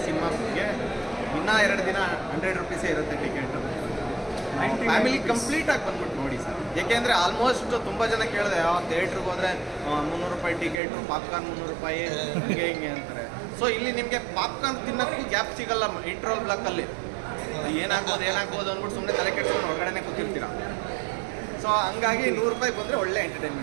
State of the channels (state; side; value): drops out; left; at 10.8 s